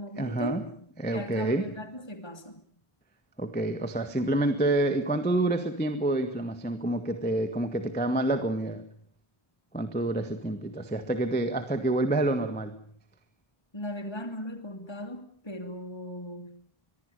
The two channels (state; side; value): late; right; 1.3 ms